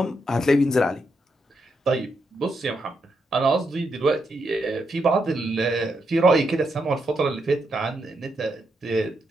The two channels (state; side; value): normal; both; correlation 0.81